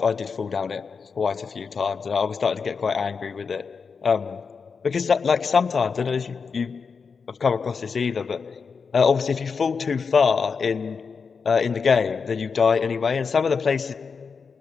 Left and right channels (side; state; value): right; quieter; 5.4 dB